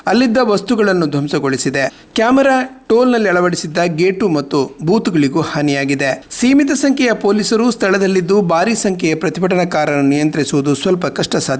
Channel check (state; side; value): identical; both; correlation 1.00